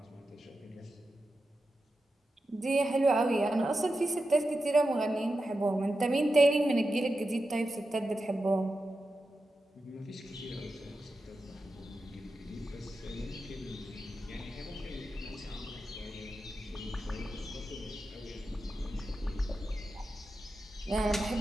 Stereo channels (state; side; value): normal; both; correlation 0.90